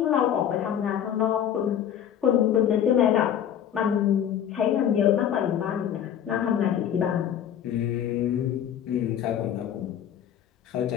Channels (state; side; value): quieter; right; 9.6 dB